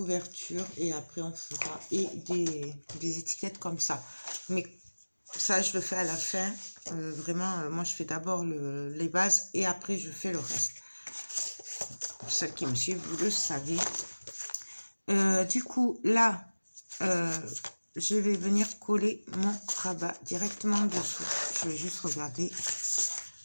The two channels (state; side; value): inverted; both; correlation -1.00